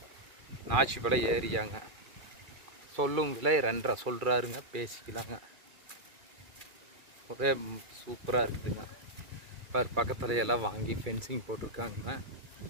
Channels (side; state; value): left; late; 2.4 ms